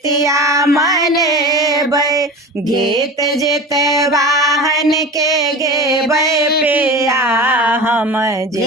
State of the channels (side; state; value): both; normal; correlation 0.32